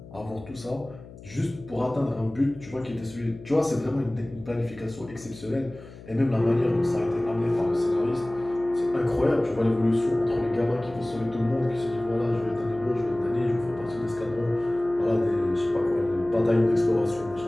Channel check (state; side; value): noise; left; hum, 18 dB below the sound